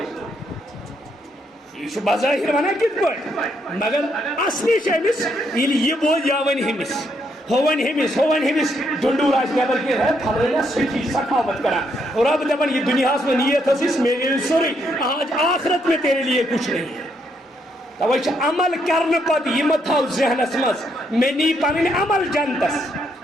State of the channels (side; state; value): both; normal; correlation 0.75